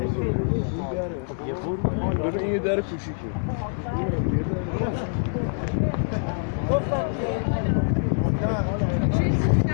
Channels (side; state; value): right; silent; digital silence